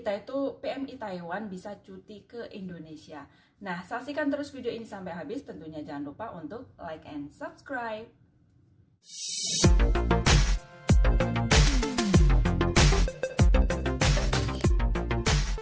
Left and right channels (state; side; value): identical; both; correlation 1.00